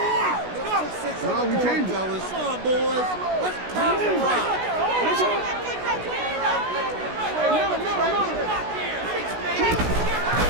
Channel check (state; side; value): late; left; 16 ms